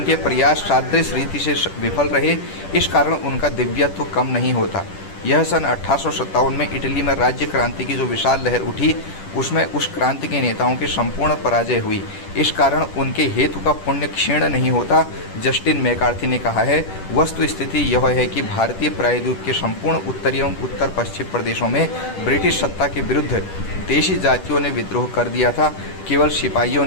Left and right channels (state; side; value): late; right; 10 ms